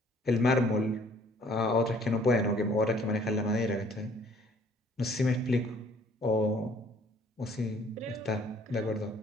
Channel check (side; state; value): both; normal; correlation 0.59